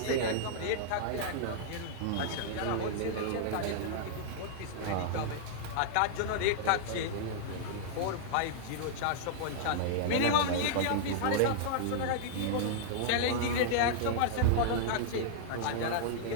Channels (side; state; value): both; different; correlation -0.01